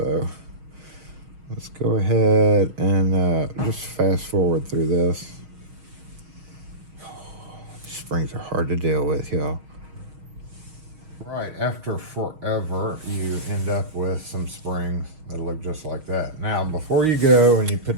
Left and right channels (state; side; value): late; left; 6.4 ms